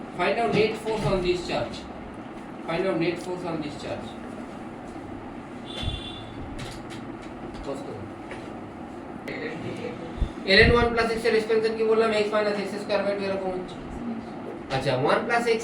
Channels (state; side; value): identical; both; correlation 1.00